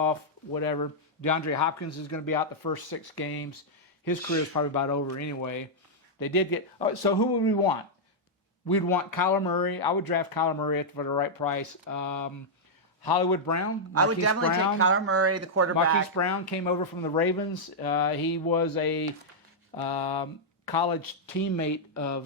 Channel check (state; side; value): normal; both; correlation -0.07